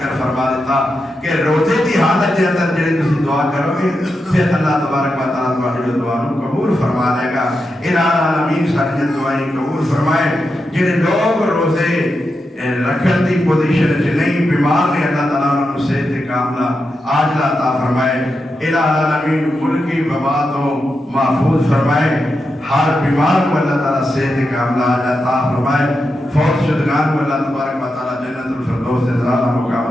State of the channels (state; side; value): normal; both; correlation 0.87